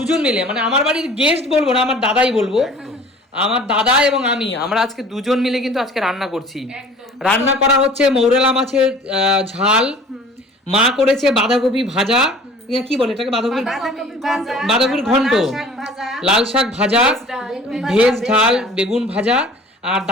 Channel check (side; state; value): both; normal; correlation 0.47